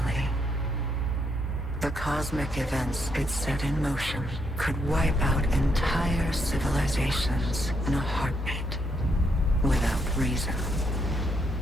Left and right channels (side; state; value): both; normal; correlation 0.76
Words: The cosmic events it set in motion could wipe out entire civilizations in a heartbeat, without reason.